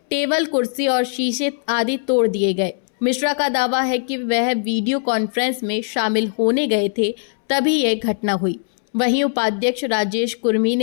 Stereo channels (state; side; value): silent; right; 66 dB below the other